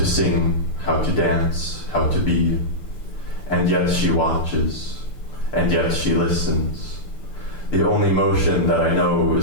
sing, how to dance, how to be. And yet she watches, and yet she listens. The only motion that I know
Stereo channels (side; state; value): right; late; 6.8 ms